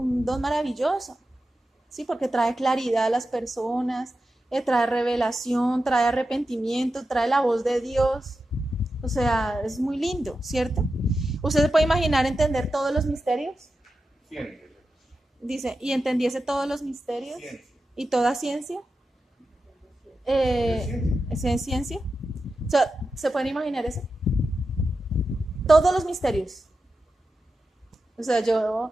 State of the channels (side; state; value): both; normal; correlation 0.90